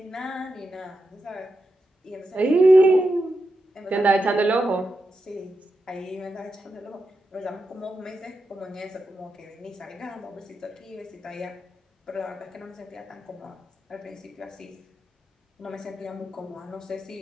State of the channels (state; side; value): normal; both; correlation 0.87